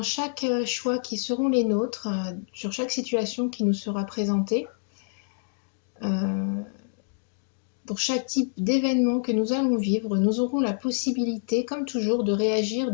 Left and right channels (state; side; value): silent; right; digital silence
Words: chaque choix qui seront les nôtres, sur chaque situation qui nous sera présentée, euh, pour chaque type d'événement que nous allons vivre, nous aurons la possibilité, comme toujours, de réagir